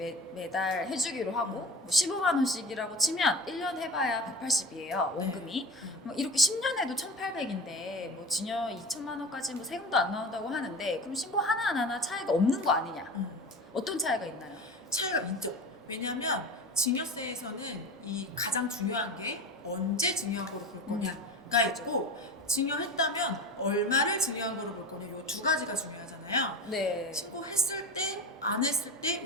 매달 해주기로 하고 뭐 15만 원씩이라고 치면 1년 해봐야 180이에요 원금이. 뭐 이렇게 10년 해도 1,800인데 뭐 증여 2천만 원까지 뭐 세금도 안 나온다고 하는데 그럼 신고 하나 차이가 없는 거 아니냐? 어떤 차이가 있나요? 차이가 있죠. 왜냐하면 증여세에서는 이 가장 중요한 게 언제 증여한 거로 볼 거냐가 있고 증여했다면 얼마를 증여한 거로 볼 거냐 요 두 가지가 중요하잖아요. 네. 신고했을 때, 안 했을 때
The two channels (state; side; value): normal; both; correlation 0.31